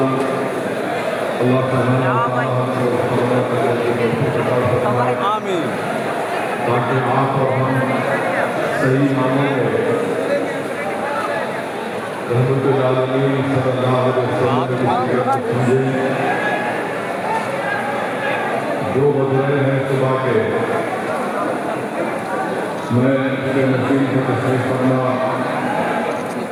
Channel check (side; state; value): both; identical; correlation 1.00